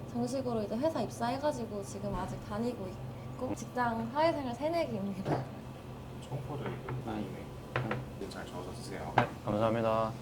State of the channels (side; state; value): both; identical; correlation 1.00